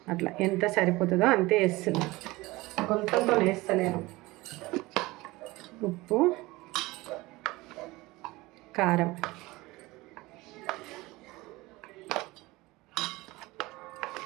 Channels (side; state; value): left; quieter; 20.9 dB